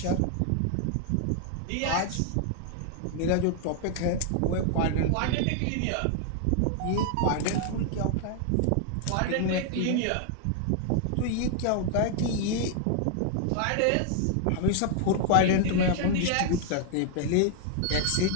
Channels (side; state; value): both; different; correlation 0.00